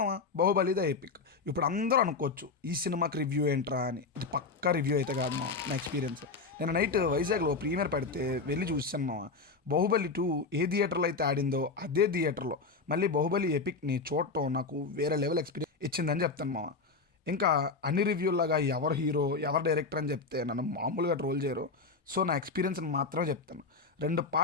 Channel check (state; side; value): quieter; right; 4.2 dB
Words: Baahubali the epic. ఇప్పుడు అందరూ అనుకోవచ్చు ఈ సినిమాకి రివ్యూ ఏంట్రా అని. ఇది పక్కా రివ్యూ అయితే కాదు మామ, నా ఎక్స్పీరియన్స్. నేను నైట్ వైజాగ్లో ప్రీమియర్ పెడితే వెళ్ళి చూసాను మామ. బాహుబలి 2 ఏ థియేటర్లో అయితే ఆడిందో అదే థియేటర్లో మళ్ళీ బాహుబలి ఎపిక్ని చూడటం నాకు వేరే లెవెల్ ఎక్స్పీరియన్స్ ఇచ్చిందని చెప్తాను మామ. ఇంకా అన్ని రివ్యూలాగా ఎవరు హీరో ఎవరు డైరెక్టర్ అని చెప్తే నన్ను మామూలుగా ట్రోల్ చేయరు. సో నా ఎక్స్పీరియన్స్ని మాత్రమే చెప్తాను. 2